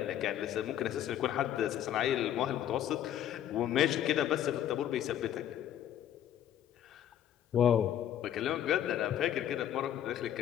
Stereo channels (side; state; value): right; quieter; 10.8 dB